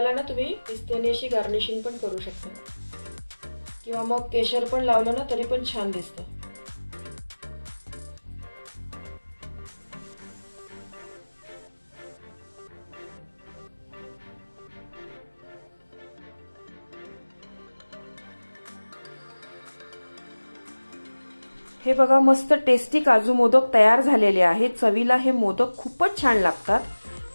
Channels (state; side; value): inverted; both; correlation -1.00